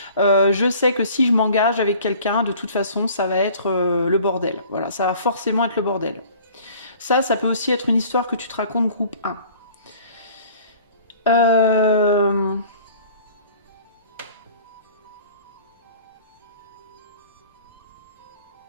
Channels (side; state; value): both; inverted; correlation -0.49